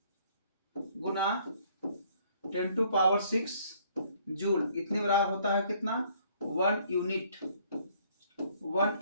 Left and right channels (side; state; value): both; inverted; correlation -0.62